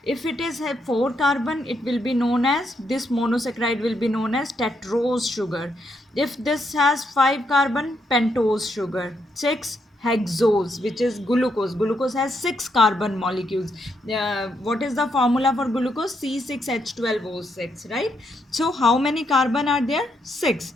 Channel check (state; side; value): normal; both; correlation 0.78